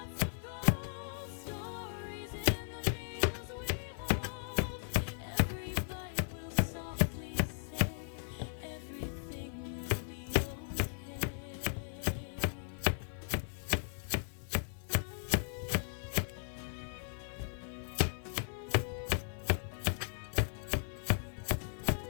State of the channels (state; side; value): silent; right; digital silence